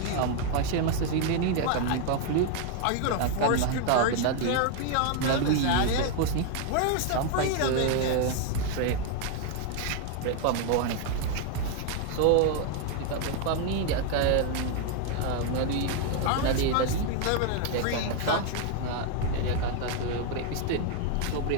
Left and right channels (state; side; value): different; both; correlation 0.00